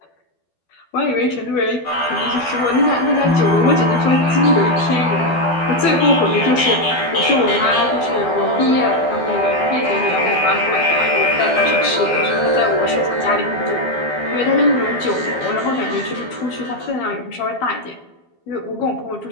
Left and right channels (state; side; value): late; right; 12 ms